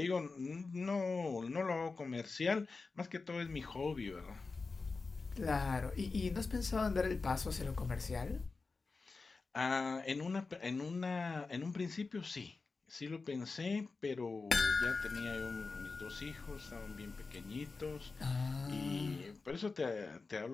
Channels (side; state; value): right; quieter; 4.1 dB